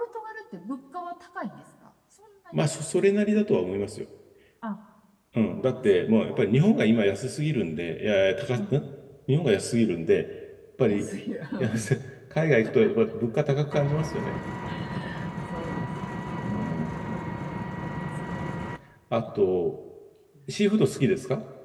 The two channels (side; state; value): both; identical; correlation 1.00